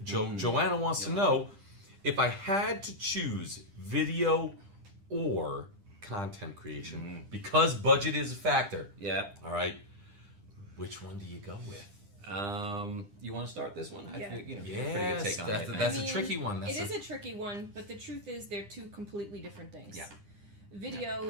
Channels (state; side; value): late; left; 10 ms